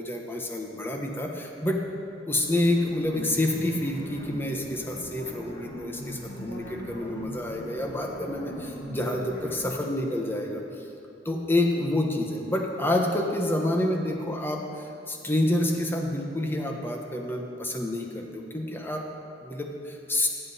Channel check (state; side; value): normal; both; correlation 0.70